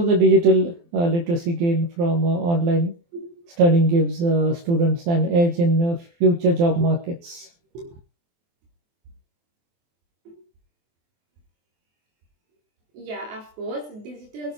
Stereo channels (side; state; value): left; late; 23 ms